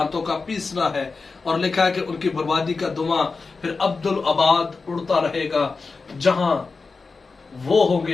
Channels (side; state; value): right; quieter; 4.3 dB